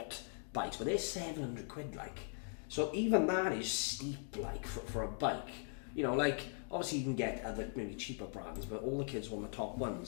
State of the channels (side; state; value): right; silent; 51 dB below the other